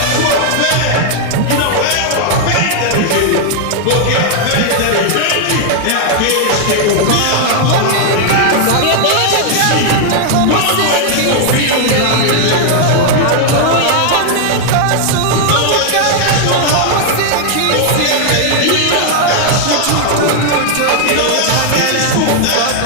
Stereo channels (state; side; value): different; both; correlation 0.00